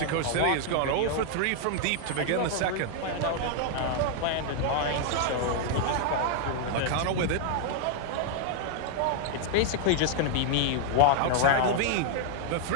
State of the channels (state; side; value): different; both; correlation 0.00